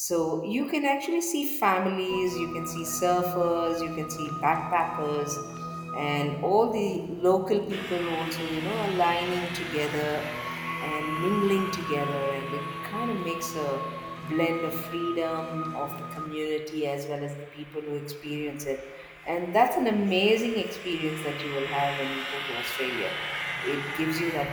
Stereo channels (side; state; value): both; identical; correlation 1.00